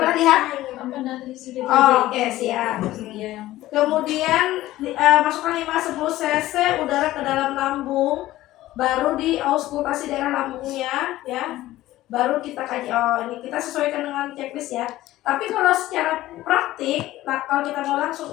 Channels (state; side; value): quieter; right; 15.8 dB